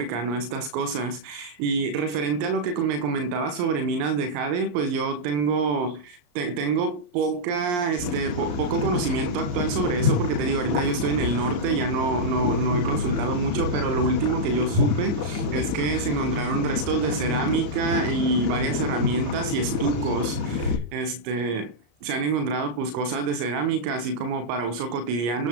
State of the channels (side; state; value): left; late; 34 ms